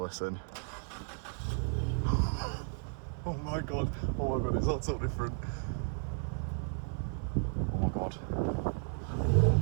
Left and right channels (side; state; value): left; silent; 55 dB below the other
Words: Oh my god, it's all so different. Oh my god.